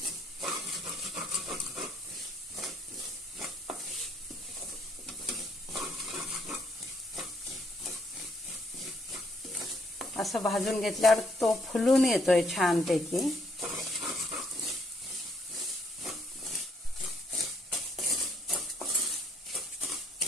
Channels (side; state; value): both; normal; correlation 0.70